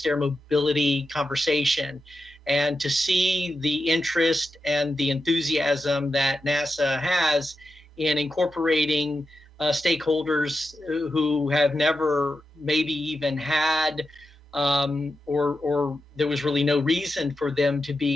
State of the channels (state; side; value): normal; both; correlation 0.88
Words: air mobility conversation. And to see the interest and the enthusiasm that NASA has in incorporating stakeholders who have never maybe even had or there was really no reason for them to